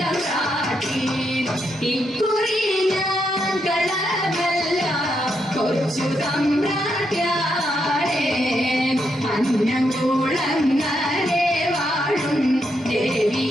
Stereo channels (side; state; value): both; normal; correlation 0.80